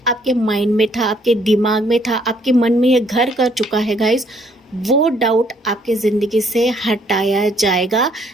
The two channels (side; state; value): both; normal; correlation 0.66